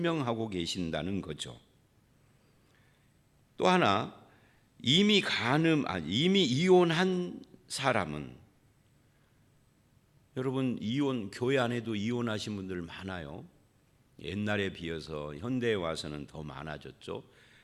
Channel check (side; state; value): both; identical; correlation 1.00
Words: 계신다는 거죠. 또 하나, 이미 이혼한 사람은, 여러분 교회 안에도 이혼하신 분들 많아요. 옛날에 비해서 현대에 와서는 더 많아졌죠.